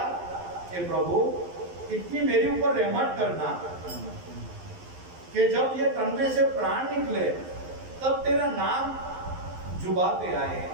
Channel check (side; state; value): left; late; 11 ms